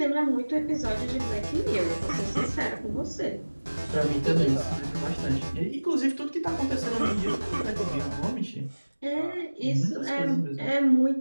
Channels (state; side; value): inverted; both; correlation -1.00